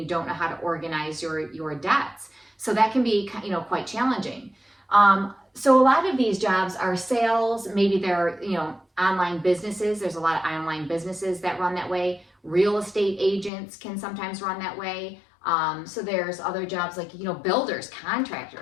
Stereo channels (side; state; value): right; drops out; at 13.5 s